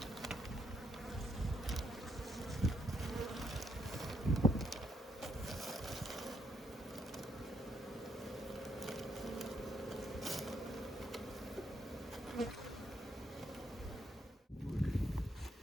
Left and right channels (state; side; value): normal; both; correlation 0.75